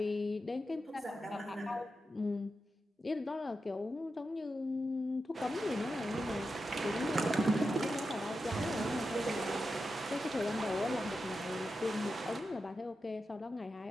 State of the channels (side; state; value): both; normal; correlation 0.89